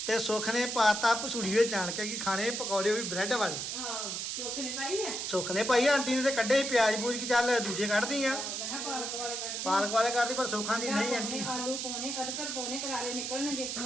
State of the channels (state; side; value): noise; right; hiss, 3 dB below the sound